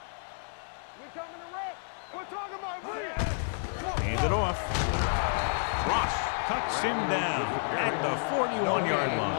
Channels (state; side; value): silent; right; digital silence